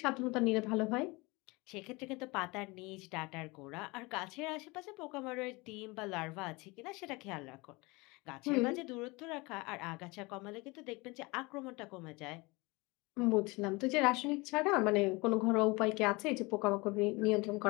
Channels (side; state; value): right; quieter; 25.0 dB